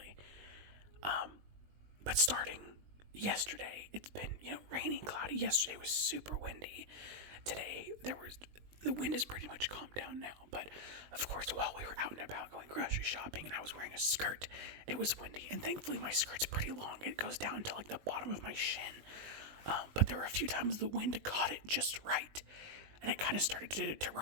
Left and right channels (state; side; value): late; left; 20 ms